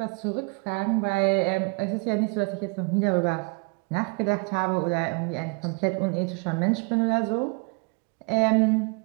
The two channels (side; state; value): left; quieter; 31.1 dB